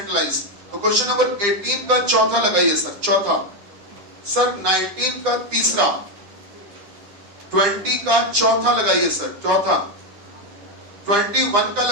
तो क्वेश्चन नंबर 18 का चौथा लगाइए सर, चौथा, सर 19 का तीसरा, 20 का चौथा लगाइए सर, चौथा, 21 का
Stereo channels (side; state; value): left; late; 9.8 ms